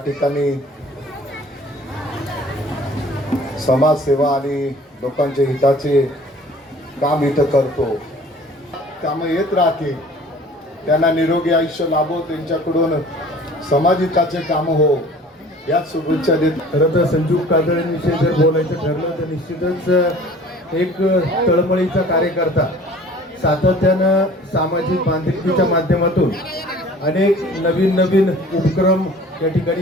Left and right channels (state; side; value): normal; both; correlation 0.48